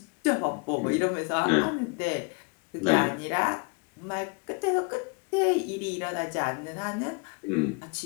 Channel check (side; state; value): right; quieter; 33.6 dB